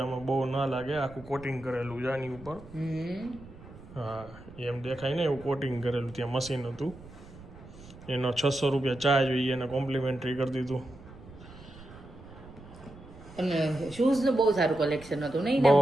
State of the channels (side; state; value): right; noise; rumble, 18 dB below the sound